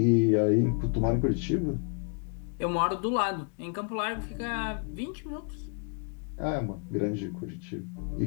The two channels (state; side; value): quieter; right; 37.3 dB